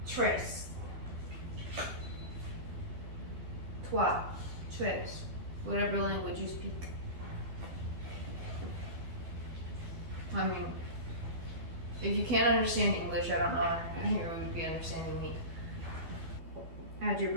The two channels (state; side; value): late; left; 12 ms